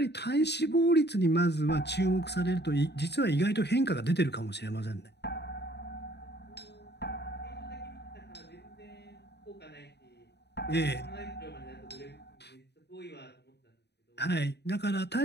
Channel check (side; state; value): right; late; 0.49 ms